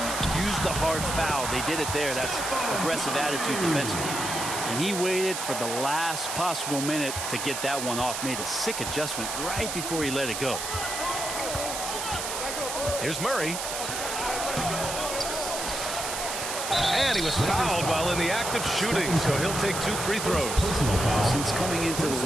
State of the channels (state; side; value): noise; right; hiss, 4 dB below the sound